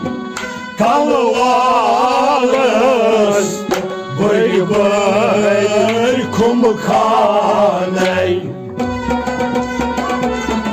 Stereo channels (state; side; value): identical; both; correlation 1.00